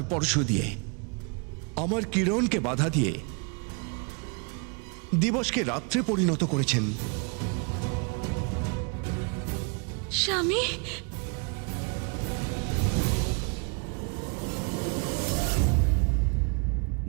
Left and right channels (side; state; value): left; quieter; 34.9 dB